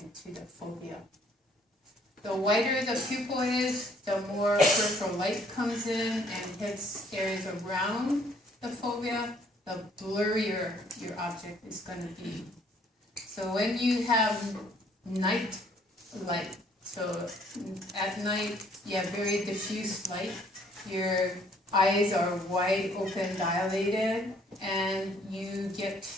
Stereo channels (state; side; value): normal; both; correlation 0.63